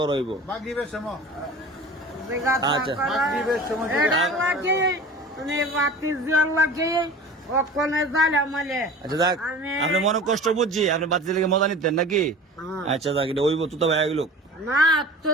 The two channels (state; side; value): normal; both; correlation 0.38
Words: হইব মাগরিবের সময় জিজ্ঞাসা আচ্ছা। করা। মাগরিবের সময় এটা লাগে মানে বাতি জল লাগে ওখানে জ্বালা মালে আচ্ছা যাক আমি- আপনি মনে কষ্ট বুঝছি আপনি বাচ্চা লেগে মজা নিতেন নাকি হ্যাঁ। আচ্ছা যাক এটা ওইব তুতাব আয়োগ লোক না